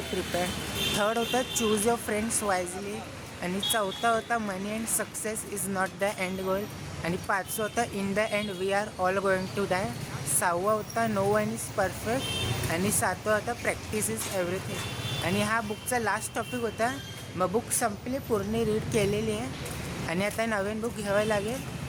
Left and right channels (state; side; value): identical; both; correlation 1.00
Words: प्रिपेअर्ड. थर्ड होता चूज युअर फ्रेंड्स वाईजली. आणि चौथा होता money and success is not the end goal. आणि 5 होता in the end we are all going to die. 6 होता नो वन इज परफेक्ट. आणि 7 होता प्रॅक्टिस इज एव्हरीथिंग. आणि हा बुकचा लास्ट टॉपिक होता. मग बुक संपली, पूर्ण रीड केलेली आहे आणि आता नवीन बुक घ्यावं लागेल.